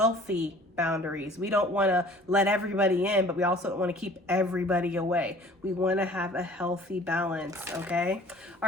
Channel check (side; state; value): both; normal; correlation 0.50